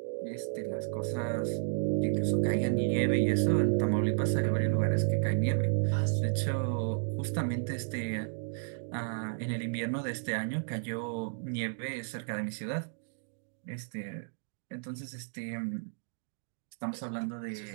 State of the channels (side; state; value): left; silent; digital silence